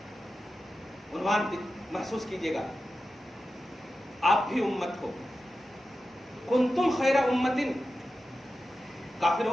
عنوان محسوس کیجئے گا، آپ بھی امت ہو۔ کنتم خیر امت،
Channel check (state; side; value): normal; both; correlation 0.92